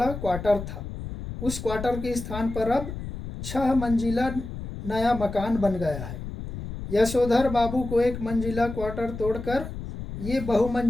क्वार्टर था। उस क्वार्टर के स्थान पर अब 6 मंजिला नया मकान बन गया है। यशोधर बाबू को 1 मंजिला क्वार्टर तोड़कर ये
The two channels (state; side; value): noise; left; rumble, 8 dB below the sound